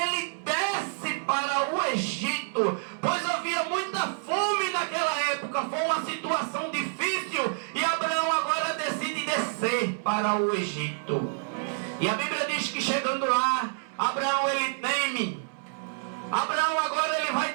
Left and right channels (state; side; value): silent; left; 59 dB below the other